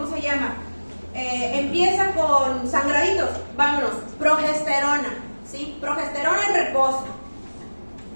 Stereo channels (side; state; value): both; inverted; correlation -1.00